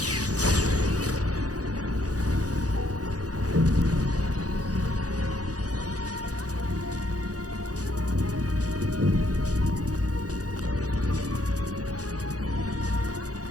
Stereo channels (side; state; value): left; late; 0.67 ms